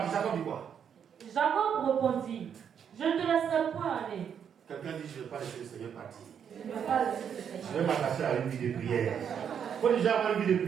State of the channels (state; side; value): quieter; left; 8.0 dB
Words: Jacob dit quoi? Jacob répondit, je ne te laisserai point aller. Quelqu'un dit, je ne vais pas laisser le Seigneur partir. Je vais m'attacher à une vie de prière. Il faut déjà avoir une vie de